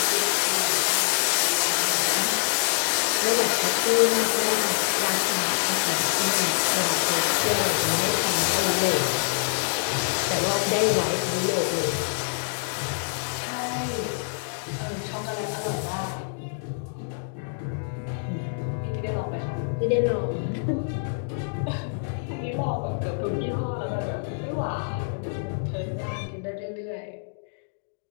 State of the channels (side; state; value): right; silent; digital silence